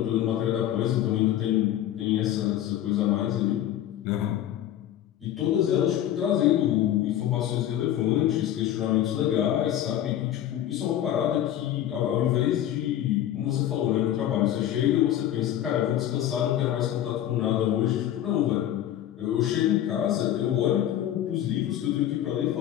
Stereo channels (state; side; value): quieter; right; 11.8 dB